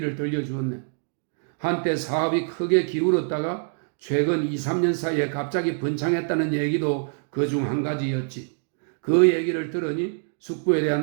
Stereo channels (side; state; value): left; silent; 62 dB below the other